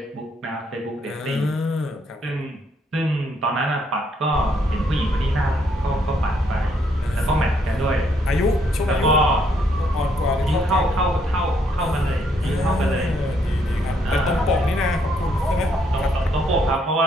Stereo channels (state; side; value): normal; both; correlation 0.71